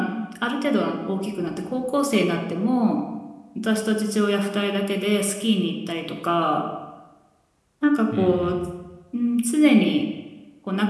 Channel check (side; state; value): both; identical; correlation 1.00